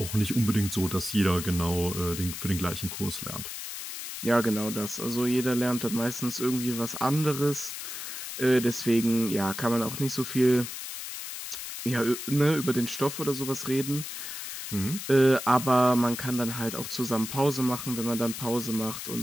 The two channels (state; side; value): noise; left; hiss, 8 dB below the sound